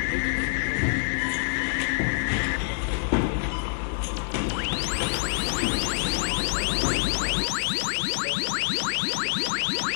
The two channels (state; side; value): silent; right; digital silence